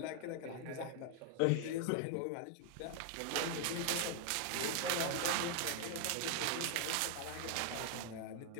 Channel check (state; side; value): different; both; correlation 0.00